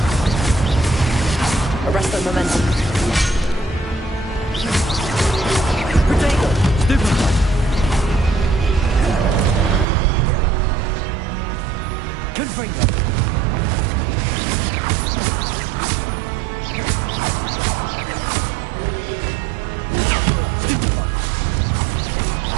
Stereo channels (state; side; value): drops out; left; at 9.9 s